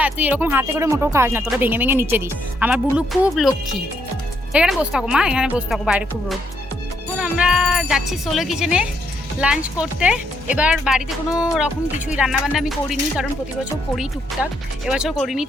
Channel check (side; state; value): both; normal; correlation 0.75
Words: তুই এরকম হাতে করে মোটেও খাস না, তোরা ভেঙে ভেঙে নিচে দিস। আমার বুলু খুব লক্ষ্মী। এখানে বসে থাকো মা, এখানে বসে থাকো, বাইরে খুব রোদ। এখন আমরা যাচ্ছি সোলো কিচেনে। লাঞ্চ করতে। এবার বাড়িতে কোনো রকম কিছুই রান্নাবান্না আমি করিনি, কারণ প্রতি বছর করি টুকটাক, এবছর করিনি।